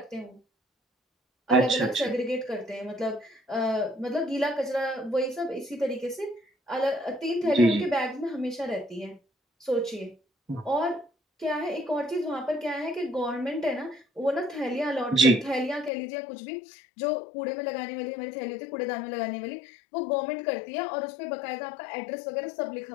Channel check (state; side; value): drops out; right; at 15.9 s